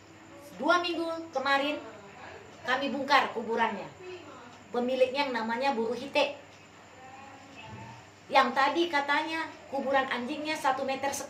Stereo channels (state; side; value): identical; both; correlation 1.00